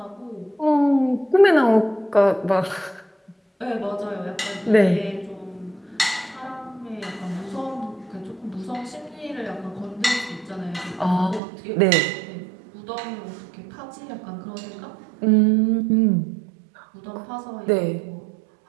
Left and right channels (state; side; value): drops out; left; at 11.4 s